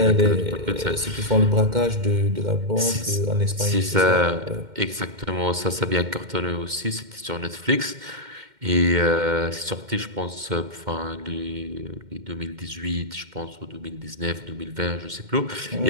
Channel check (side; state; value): left; late; 2.1 ms